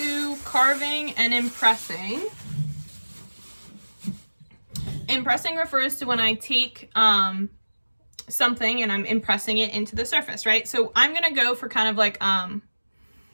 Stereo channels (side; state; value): both; inverted; correlation -1.00